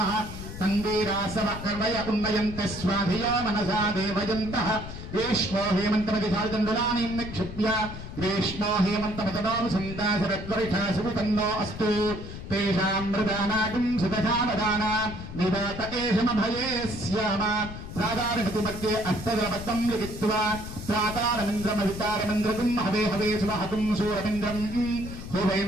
తంగీరాసవకర్వయ ఉన్నయంత స్వాధియా మనసా దేవయంతః గ్రీష్మో హేమంతమధిశాల్దండులానీం నిక్షిప్య గ్రీష్మో హేమంతమతనోం సందాశరద్వరిషాసు తన్నో అస్తు తేషాం మృదానాకిం సుదశావదానా నివాత ఏషమభయే స్యామ సాధారణతి మధ్యే అష్టదలబద్ధం లిఖిత్వా ప్రాతారమింద్రమహితారమింద్రకం హవే హవే సువహతుం సూరమింద్రం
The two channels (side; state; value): left; noise; rumble, 10 dB below the sound